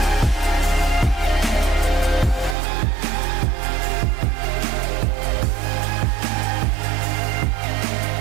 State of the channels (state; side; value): drops out; left; at 2.6 s